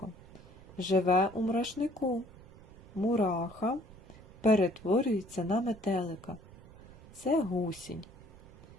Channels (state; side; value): noise; right; rumble, 20 dB below the sound